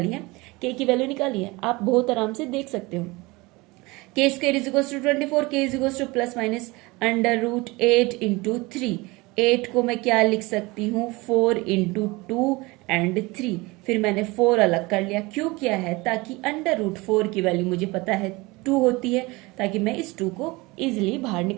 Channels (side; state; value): left; quieter; 23.3 dB